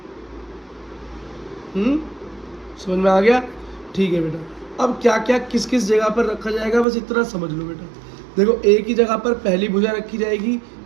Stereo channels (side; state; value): left; drops out; at 6.9 s